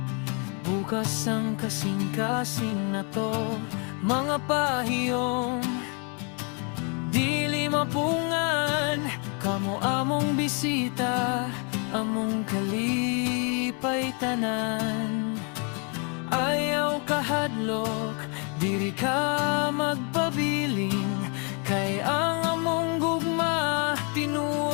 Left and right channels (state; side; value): quieter; right; 37.1 dB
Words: bukas ang kasing-kasing na to. Mga pahiyong dili mapungan, kamo among bisita, among kalipay tanan. Ayaw kahadlok, diri ka magpabiling, kay ang among gugma